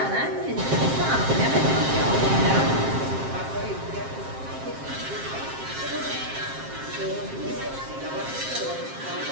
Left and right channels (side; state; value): left; late; 7.5 ms